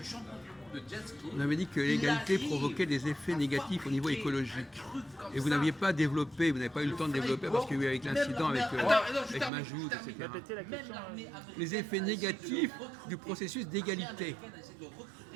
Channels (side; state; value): left; drops out; at 9.5 s